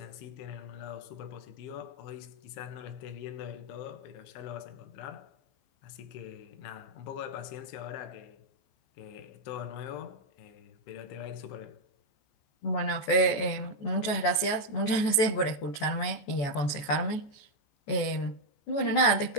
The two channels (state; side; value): late; right; 14 ms